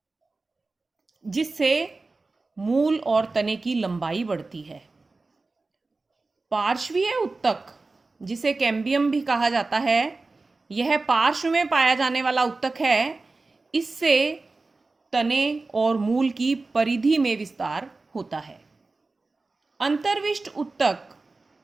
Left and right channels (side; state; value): left; quieter; 3.6 dB